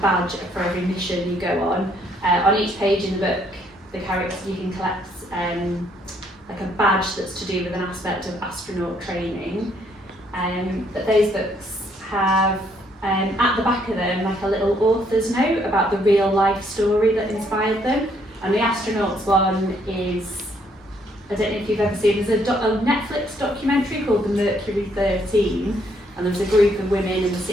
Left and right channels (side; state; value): both; normal; correlation 0.69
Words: badge for every mission you go on. On each page in the book, the characters, you can collect like a badge that's to do with an aspect of astronaut training. But those books have at the back of them like a little author's note about the real life story that inspired them. And the astronauts one is, I don't know if you've ever seen, there's a Netflix documentary called The Mercury 13, and there was a group of women in the